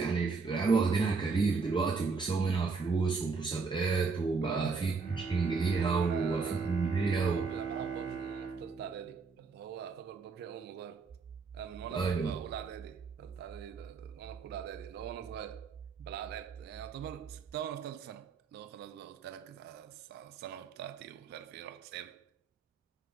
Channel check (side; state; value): left; quieter; 4.7 dB